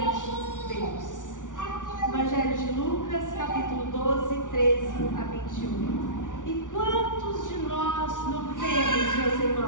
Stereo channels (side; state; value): right; late; 0.87 ms